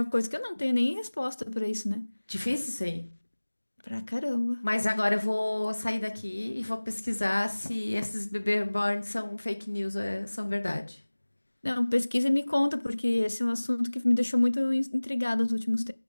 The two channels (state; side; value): inverted; both; correlation -1.00